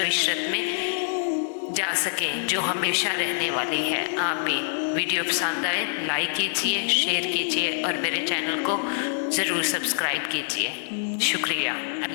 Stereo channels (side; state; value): right; silent; digital silence